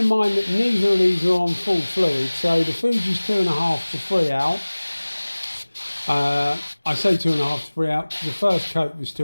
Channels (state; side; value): inverted; both; correlation -1.00